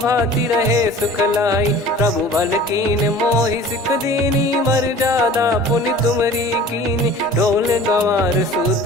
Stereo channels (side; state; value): both; normal; correlation 0.44